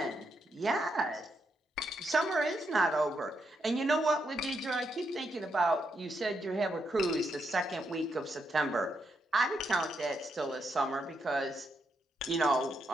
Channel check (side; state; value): both; normal; correlation 0.81